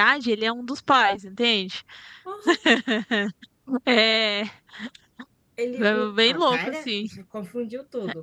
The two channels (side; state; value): both; identical; correlation 1.00